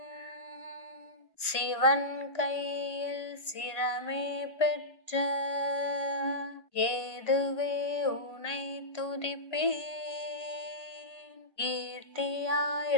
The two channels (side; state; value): right; late; 1.6 ms